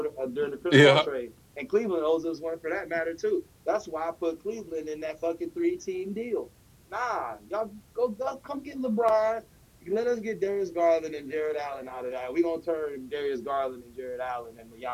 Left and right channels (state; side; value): identical; both; correlation 1.00